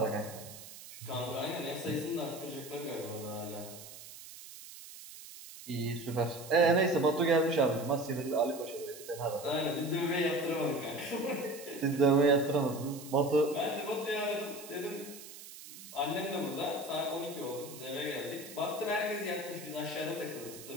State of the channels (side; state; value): right; noise; hiss, 15 dB below the sound